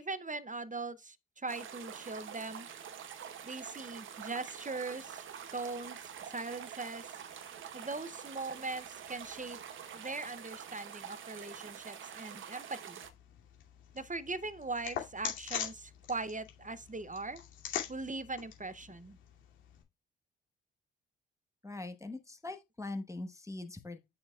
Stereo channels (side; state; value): both; normal; correlation 0.11